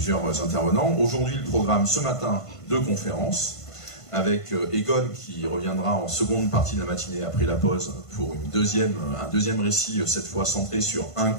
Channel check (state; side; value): late; right; 1.5 ms